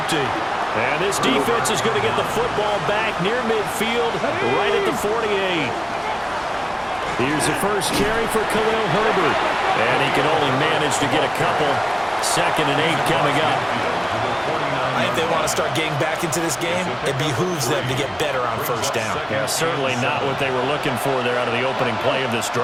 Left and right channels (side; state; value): both; identical; correlation 1.00